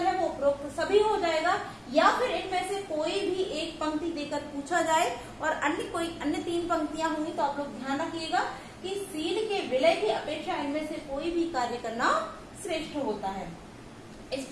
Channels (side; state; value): both; identical; correlation 1.00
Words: है वो उपरोक्त सभी हो जाएगा, या फिर इनमें से कोई भी एक पंक्ति देकर पूछा जाए और अन्य 3 पंक्तियां होंगी तो आप लोग ध्यान रखिएगा कि सील के विलय की अपेक्षा इनमें से कोई भी कार्य करना श्रेष्ठ होता है। इस